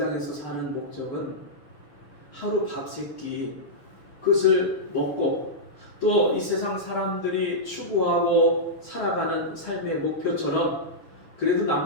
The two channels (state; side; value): late; right; 6.4 ms